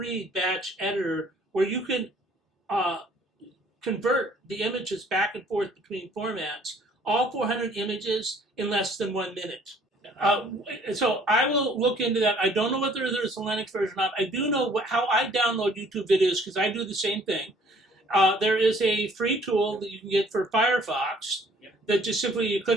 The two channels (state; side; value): normal; both; correlation 0.58